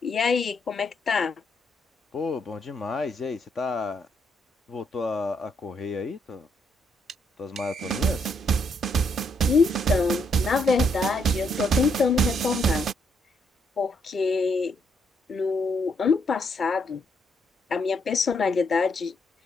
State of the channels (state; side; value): normal; both; correlation 0.74